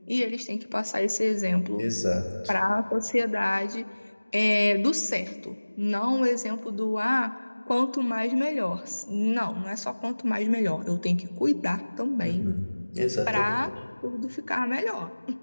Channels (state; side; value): inverted; both; correlation -1.00